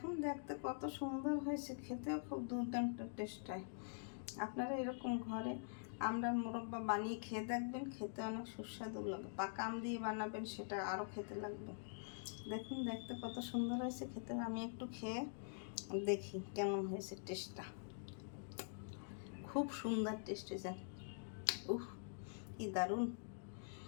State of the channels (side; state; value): right; silent; digital silence